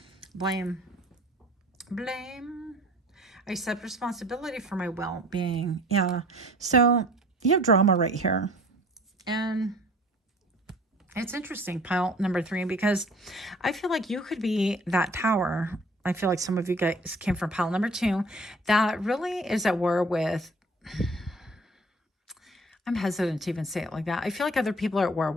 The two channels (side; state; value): both; normal; correlation 0.50